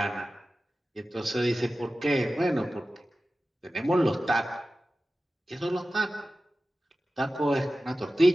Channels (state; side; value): normal; both; correlation 0.95